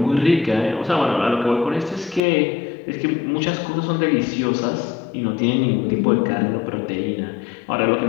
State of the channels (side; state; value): right; drops out; at 2.2 s